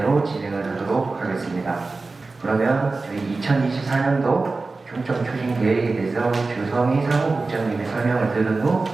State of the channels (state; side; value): quieter; left; 3.7 dB